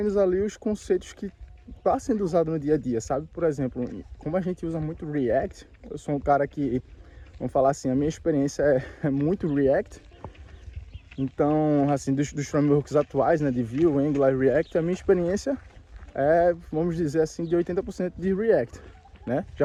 ali os conceitos que está sendo usado no dia a dia, sabe? Por exemplo, como a gente usa muito React, eu sou um cara que, vamos falar assim, a minha experiência é muito React. Então, assim, dos frameworks atuais, né, de Vue, Angular e React, a minha experiência é, vamos dizer assim, de 80% de React, né?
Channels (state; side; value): identical; both; correlation 1.00